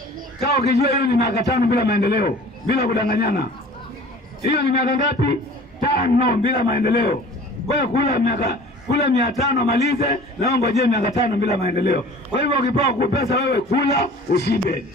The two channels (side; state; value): both; normal; correlation 0.45